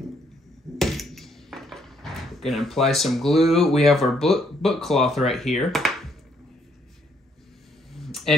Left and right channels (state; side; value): normal; both; correlation 0.70